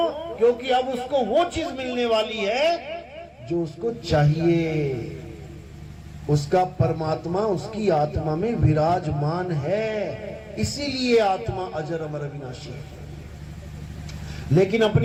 क्योंकि अब उसको वो चीज मिलने वाली है जो उसको चाहिए। उसका परमात्मा उसकी आत्मा में विराजमान है, इसीलिए आत्मा अजर अमर अविनाशी है। लेकिन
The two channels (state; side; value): identical; both; correlation 1.00